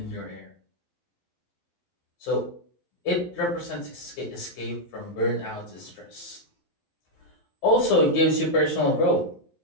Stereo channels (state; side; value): late; right; 11 ms